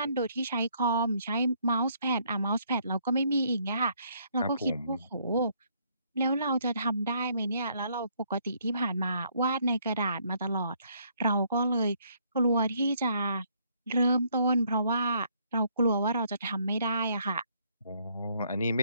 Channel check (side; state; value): both; inverted; correlation -0.68